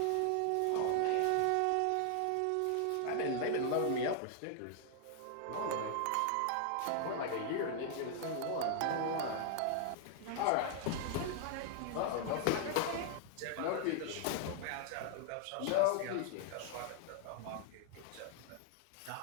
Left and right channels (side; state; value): both; different; correlation 0.00